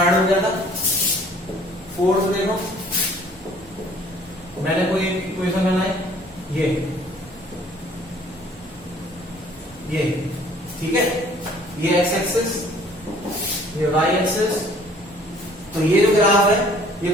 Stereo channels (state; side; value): normal; both; correlation 0.55